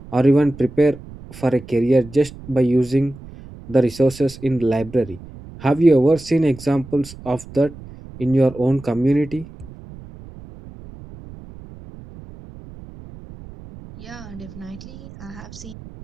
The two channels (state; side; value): noise; right; rumble, 17 dB below the sound